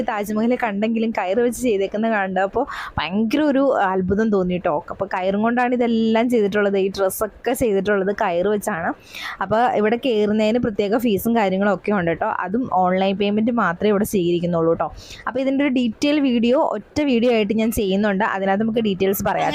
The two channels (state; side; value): identical; both; correlation 1.00